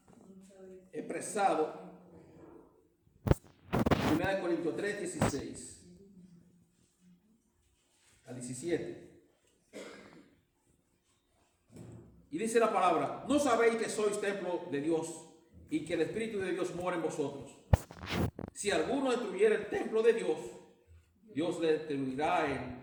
expresados 1 Corintios 3, 16 al 17. Y dice la palabra, ¿no sabéis que sois templo de Dios y que el Espíritu de Dios mora en vosotros? Si alguno destruyera el templo de Dios, Dios le destruirá a él,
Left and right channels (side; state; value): both; identical; correlation 1.00